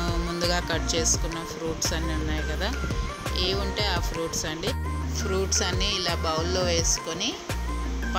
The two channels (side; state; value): both; identical; correlation 1.00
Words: ముందుగా కట్ చేసుకున్న ఫ్రూట్స్ అన్నీ ఉన్నాయి కదా, ఏ ఉంటే ఆ ఫ్రూట్స్ అన్నీ ఇలా బౌల్లో వేసుకొని